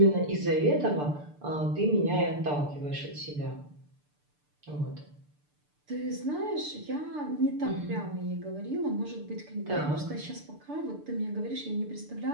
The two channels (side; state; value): left; late; 6.8 ms